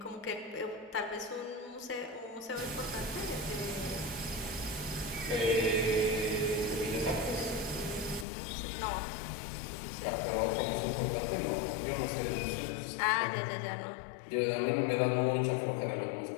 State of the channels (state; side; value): drops out; right; at 8.2 s